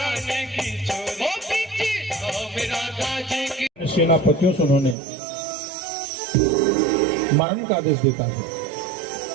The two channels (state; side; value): drops out; left; at 5.0 s